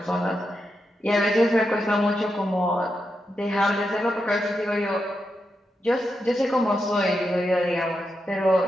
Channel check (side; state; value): both; normal; correlation 0.86